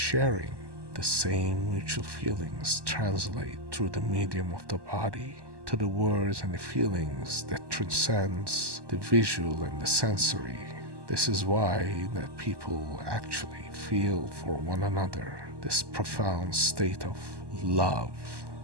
The same mutual feelings translate through the medium of the body to the words and the feelings that transcends the visual and the sensory. This is why that people actually feel for one another this profound state of love.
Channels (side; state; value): left; late; 1.2 ms